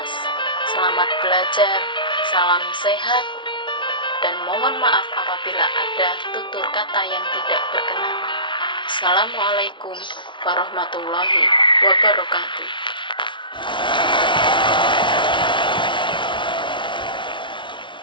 selamat belajar, salam sehat, dan mohon maaf apabila ada tutur kata yang tidak berkenan. Assalamualaikum warahmatullahi wabarakatuh.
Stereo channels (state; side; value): late; right; 0.24 ms